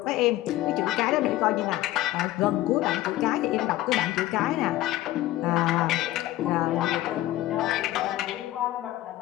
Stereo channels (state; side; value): quieter; right; 15.6 dB